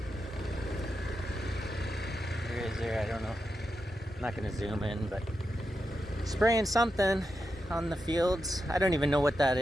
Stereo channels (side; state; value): both; normal; correlation 0.88